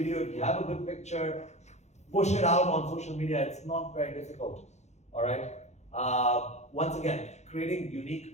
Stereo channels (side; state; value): right; late; 0.33 ms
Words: if you have a good picture, push it out on social media. It's not very difficult. All right. Once again, creating